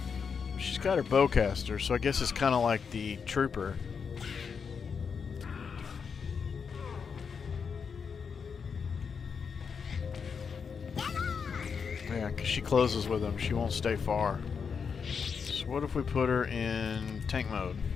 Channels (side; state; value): right; quieter; 6.1 dB